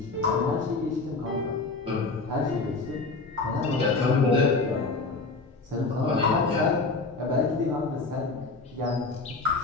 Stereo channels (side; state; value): right; quieter; 3.8 dB